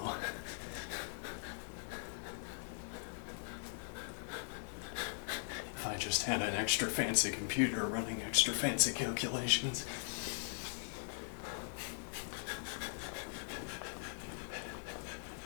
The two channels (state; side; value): silent; right; 51 dB below the other